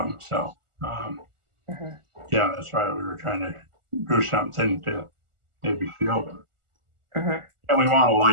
So, that's why we were trying to do something to maybe shield them. And we want a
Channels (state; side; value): late; left; 1.4 ms